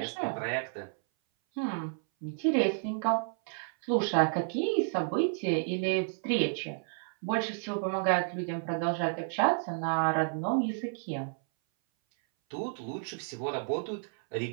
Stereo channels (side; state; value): left; silent; 57 dB below the other